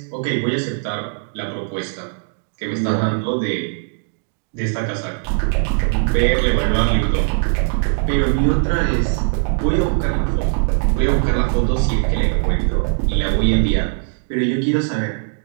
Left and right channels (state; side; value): silent; left; 58 dB below the other